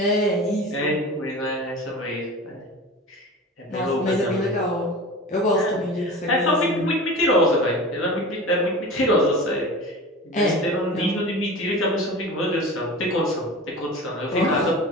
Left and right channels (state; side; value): normal; both; correlation 0.34